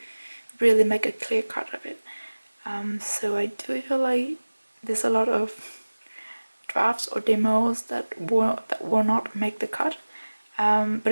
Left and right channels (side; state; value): both; inverted; correlation -1.00